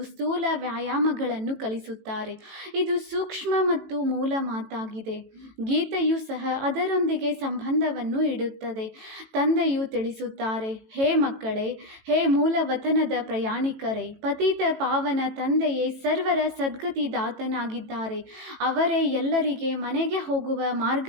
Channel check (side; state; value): left; late; 18 ms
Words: ಸ್ಥೂಲ ವ್ಯಾಯಾಮಗಳನ್ನು ಕಲಿಸುತ್ತಾರೆ. ಇದು ಸೂಕ್ಷ್ಮ ಮತ್ತು ಮೂಲ ಮಾತಾಗಿದೆ. ಗೀತೆಯು ಸಹ ಅದರೊಂದಿಗೆ ಸಂಬಂಧವನ್ನು ಇಡುತ್ತದೆ. ತಂದೆಯು ತಿಳಿಸುತ್ತಾರೆ, ಹೇ ಮಕ್ಕಳೇ, ಹೇ ಮೂಲವತನದ ಪ್ರಯಾಣಿಕರೇ, ಪತಿತ ಪಾವನ ತಂದೆಯೇ ಸರ್ವರ ಸದ್ಗತಿದಾತನಾಗಿದ್ದಾರೆ. ಅವರೇ ಎಲ್ಲರಿಗೆ ಮನೆಗೆ ಹೋಗುವ